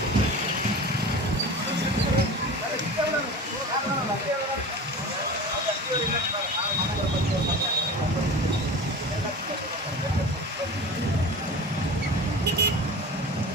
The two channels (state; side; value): normal; both; correlation 0.34